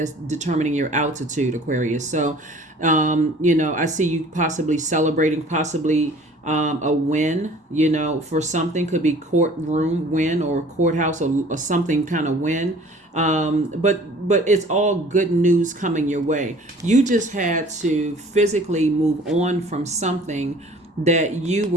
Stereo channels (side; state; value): both; normal; correlation 0.50